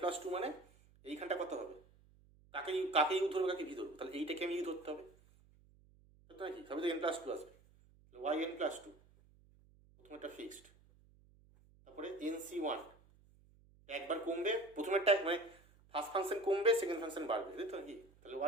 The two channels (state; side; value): noise; right; hum, 27 dB below the sound